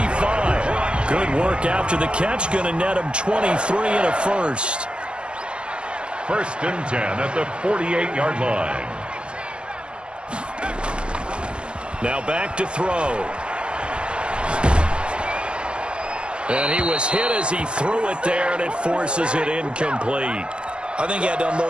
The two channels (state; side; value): late; left; 0.056 ms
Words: Good work after the catch. Going to net him 23 and a first. First and 10 at the 48-yard line. Now back to throw. And he was hit as he threw it there, and it forces it incomplete. I think he had to